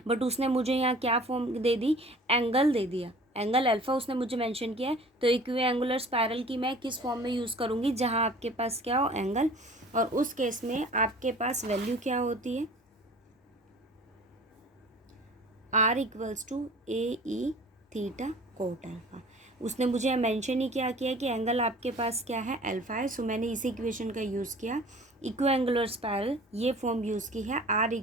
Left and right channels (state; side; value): normal; both; correlation 0.46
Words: बट उसने मुझे यहाँ क्या फॉर्म दे दी, एंगल दे दिया, एंगल अल्फा उसने मुझे मेंशन किया है। तो इक्विएंगुलर स्पायरल की मैं किस फॉर्म में यूज़ करूँगी, जहाँ आपके पास क्या हो, एंगल, और उस केस में आपके पास वैल्यू क्या होती है, r equals to A E theta cot alpha. उसने मुझे मेंशन ही क्या किया कि एंगल आपके पास क्या है, अल्फा है। सो मैंने इसी इक्वेशन का यूज़ किया, इक्विएंगुलर स्पायरल ये फॉर्म यूज़ की है, r